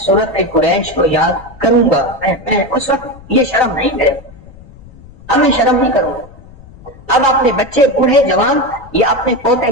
قریش کو یاد کروں گا۔ میں اس وقت یہ شرم نہیں کرے، اب میں شرم نہیں کروں گا۔ اب اپنے بچے، بوڑھے، جوان، یا اپنے پوتے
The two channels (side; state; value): left; noise; rumble, 21 dB below the sound